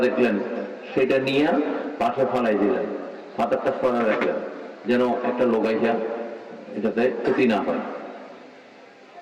দেখলেন, সেটা নিয়ে পাশে ফালাই দিলেন, পাথরটা সরা রাখলেন, যেন একটা লোক আইসা এটাতে ক্ষতি না হয়।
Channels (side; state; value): both; identical; correlation 1.00